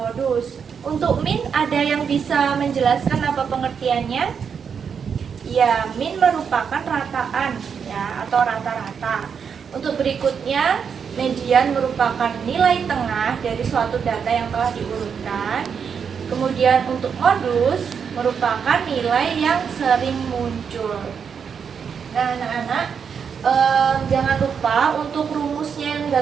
modus. Untuk min ada yang bisa menjelaskan apa pengertiannya? Ya, min merupakan rataan ya atau rata-rata. Untuk berikutnya, median merupakan nilai tengah dari suatu data yang telah diurutkan. Kemudian untuk modus merupakan nilai yang sering muncul. Nah, anak-anak, jangan lupa untuk rumusnya yang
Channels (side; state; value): left; quieter; 6.7 dB